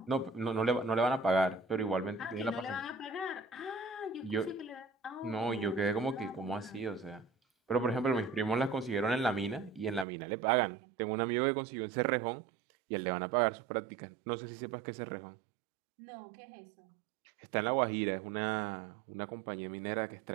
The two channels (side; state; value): left; drops out; at 10.1 s